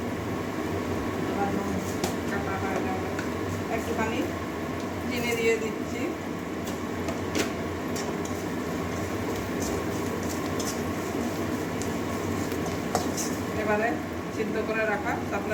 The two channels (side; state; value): both; identical; correlation 1.00